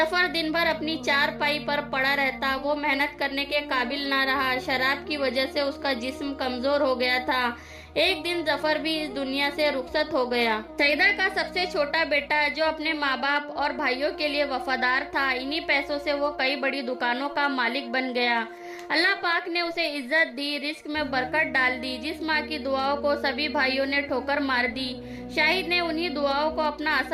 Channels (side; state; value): both; identical; correlation 1.00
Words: دن بھر اپنی چارپائی پر پڑا رہتا، وہ محنت کرنے کے قابل نہ رہا۔ شراب کی وجہ سے اس کا جسم کمزور ہو گیا تھا۔ ایک دن ظفر بھی اس دنیا سے رخصت ہو گیا۔ سعیدہ کا سب سے چھوٹا بیٹا جو اپنے ماں باپ اور بھائیوں کے لیے وفادار تھا، انہی پیسوں سے وہ کئی بڑی دکانوں کا مالک بن گیا۔ اللہ پاک نے اسے عزت دی، رزق میں برکت ڈال دی۔ جس ماں کی دعاؤں کو سبھی بھائیوں نے ٹھوکر مار دی، شاہد نے انہی دعاؤں کو اپنا